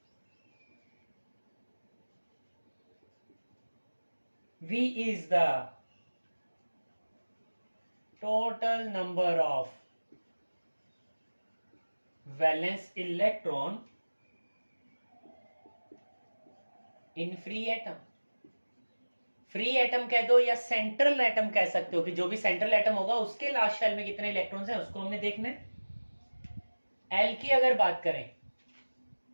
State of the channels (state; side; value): inverted; both; correlation -1.00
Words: V is the total number of valence electron in free atom. Free atom कह दो या सेंट्रल एटम कह सकते हो कि जो भी सेंट्रल एटम होगा उसके लास्ट शेल में कितने इलेक्ट्रॉन्स हैं उसको हमने देखना है। एल की अगर बात करें